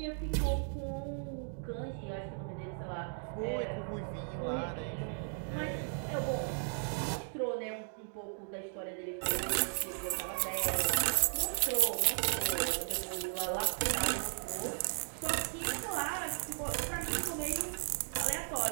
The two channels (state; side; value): silent; left; 54 dB below the other